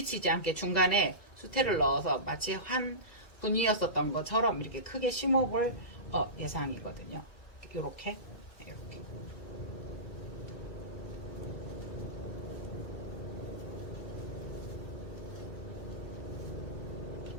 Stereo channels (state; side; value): late; right; 2.3 ms